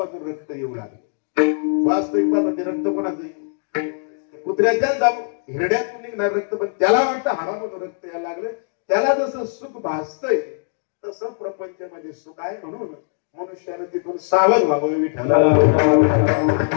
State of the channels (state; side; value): silent; right; digital silence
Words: रक्त येऊ लागले. वास्तविक ते रक्त कोणाचं? कुत्र्याच्या हिरड्यातून निघणार रक्त, पण त्याला वाटतं हाडामधून रक्त यायला लागलं. त्याला जसं सुख भासतंय तसं प्रपंचामध्ये सुख आहे. म्हणून मनुष्यानं तिथून सावध व्हावं. विठ्ठल